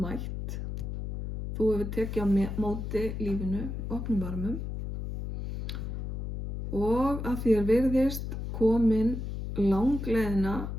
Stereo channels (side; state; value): left; noise; hum, 5 dB below the sound